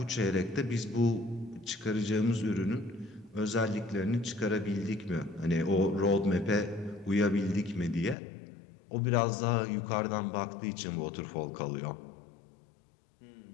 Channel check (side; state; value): right; drops out; at 8.2 s